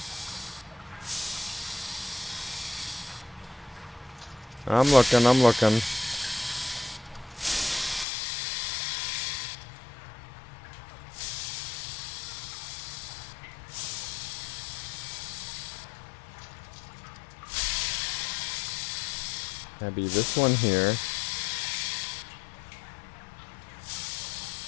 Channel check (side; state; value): right; drops out; at 8.1 s